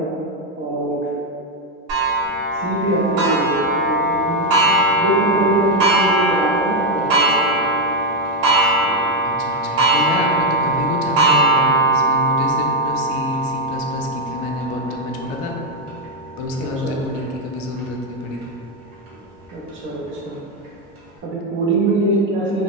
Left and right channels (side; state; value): both; normal; correlation 0.04